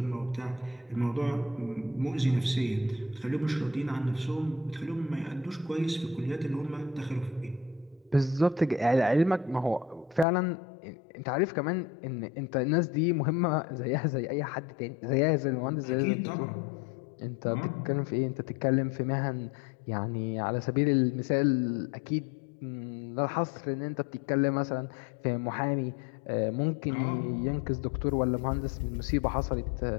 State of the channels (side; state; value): right; drops out; at 10.2 s